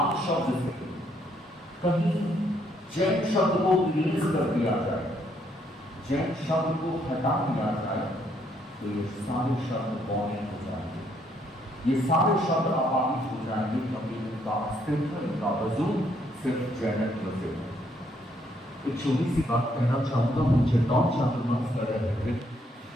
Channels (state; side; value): normal; both; correlation 0.71